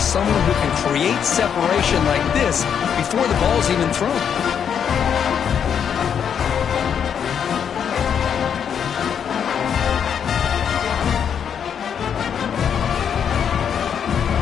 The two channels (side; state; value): right; quieter; 7.9 dB